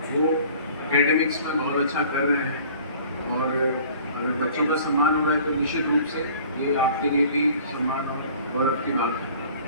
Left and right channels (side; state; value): both; inverted; correlation -0.49